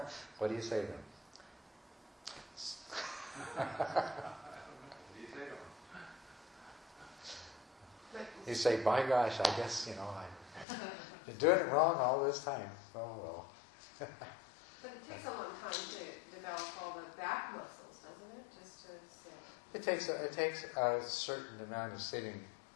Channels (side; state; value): right; drops out; at 10.7 s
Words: what do you say then? You say, by gosh, I guess, I've been doing it wrong all this time. Oh, well. But it takes a long time to develop all the back muscles, doesn't it? Just to sit. It takes a certain amount of sitting